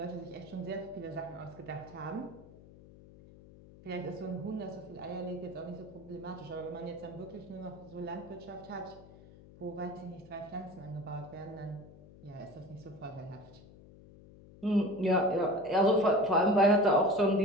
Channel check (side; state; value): left; noise; hum, 21 dB below the sound